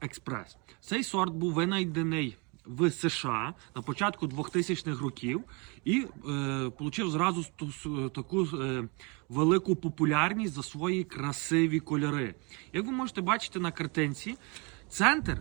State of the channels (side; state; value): left; quieter; 30.8 dB